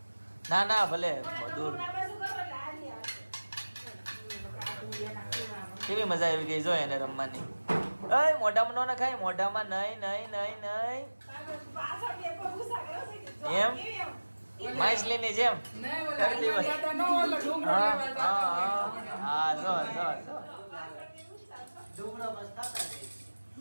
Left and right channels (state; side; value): inverted; both; correlation -1.00